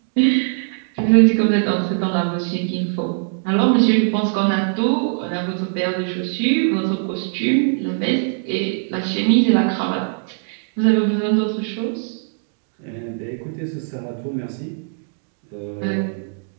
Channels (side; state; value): left; silent; digital silence